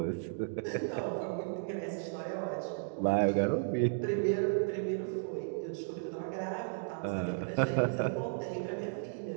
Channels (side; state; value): left; silent; digital silence